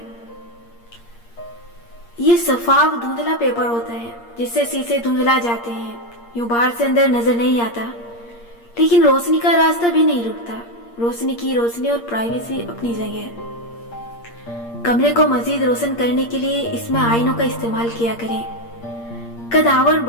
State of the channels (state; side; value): late; right; 8.6 ms